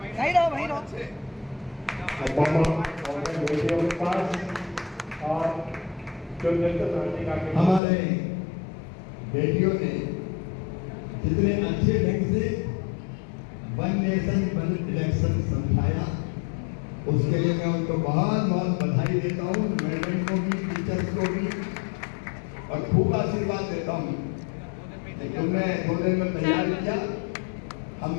वहीं रहो, वहीं रहो। बेटियों के पास और जो हमारे बेटियों ने जितने अच्छे ढंग से वन नेशन वन इलेक्शन समझाया, उसके लिए मैं उनको बहुत बहुत बधाई देता हूँ, मैनेजमेंट को भी, टीचर्स को भी, और खूब आशीर्वाद देता हूँ। तुमने 2 दिन में तैयार किया, हम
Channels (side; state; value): right; drops out; at 7.8 s